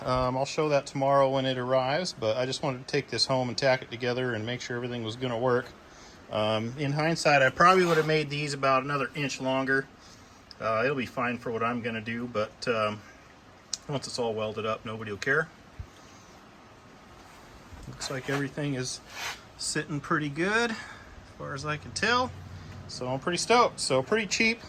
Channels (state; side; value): identical; both; correlation 1.00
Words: I'll show that tomorrow when it arrives, but I just wanted to take this home and tack it together and make sure everything was going to work. In hindsight, I probably would have made these about another inch longer. It'll be fine for what I'm going to do, but once it's all welded up, nobody will care. Looks like everything is sitting pretty good as far as I can tell. So I'm pretty stoked. So pretty cheap.